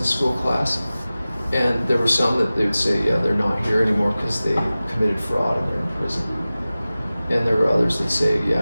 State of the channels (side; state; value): both; inverted; correlation -0.97